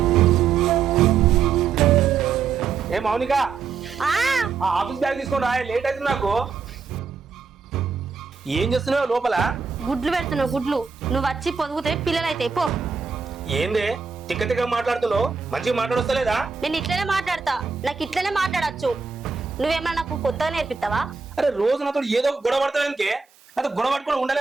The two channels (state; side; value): quieter; left; 5.4 dB